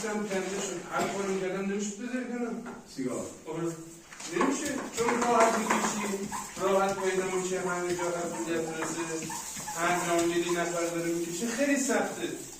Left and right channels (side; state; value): both; identical; correlation 1.00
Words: کنده شد هر کاری کردم نمیشد بذاری کنم سیگار نمیشه چون راحت میکشی راحت پیدا میشه همه جا قبولیت رسه هر جا میری نفر داره میکشه خیلی سخته